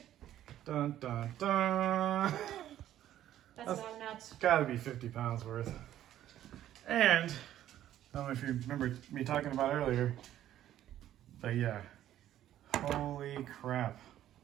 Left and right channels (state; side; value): quieter; left; 12.2 dB